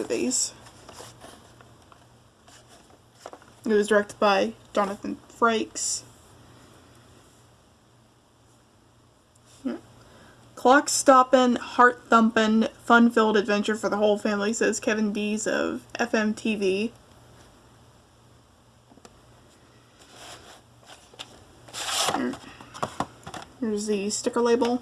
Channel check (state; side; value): identical; both; correlation 1.00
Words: It was directed by Jonathan Frakes. Yeah. Clock stoppin', heart thumpin', fun-filled adventure for the whole family, says Kevin Dees of FMTV. Here's the sticker label.